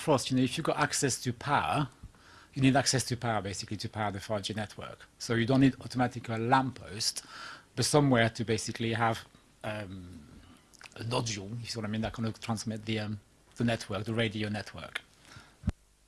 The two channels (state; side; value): identical; both; correlation 1.00